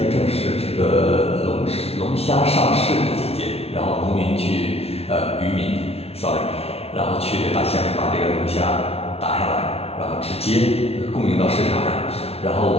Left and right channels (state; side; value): late; right; 0.30 ms